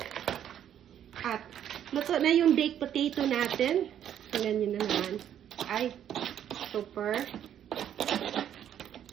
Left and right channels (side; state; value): left; quieter; 10.1 dB